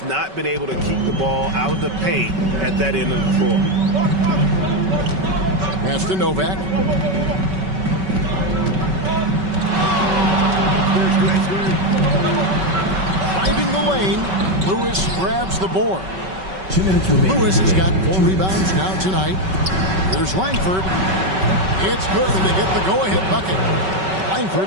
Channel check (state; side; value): late; left; 5.3 ms